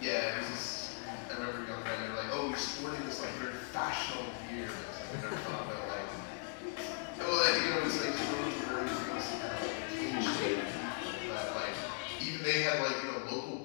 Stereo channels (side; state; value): right; quieter; 31.8 dB